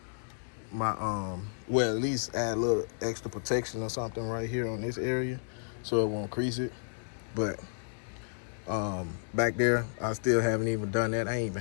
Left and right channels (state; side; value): silent; right; digital silence